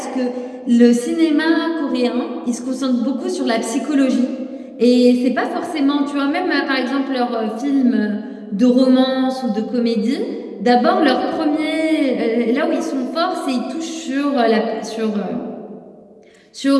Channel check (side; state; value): both; identical; correlation 1.00